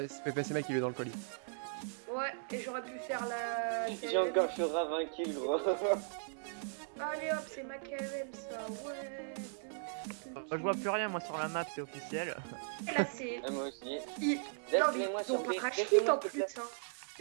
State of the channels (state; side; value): silent; left; 53 dB below the other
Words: PPC mec qui est dans le colis. Ouais, et j'aurais pu faire la. J'ai encore sur 20 kills, gros. Allez hop, c'est ma KM ça, ouais. Je vois plus rien, moi, sur la map, c'est officiel. Là, c'est. Ah, moi aussi. Ils... Non, mais Laisse-les-moi ils ont sur pas B. racheté Laisse-les-moi, en s'il te plus, plaît. hein.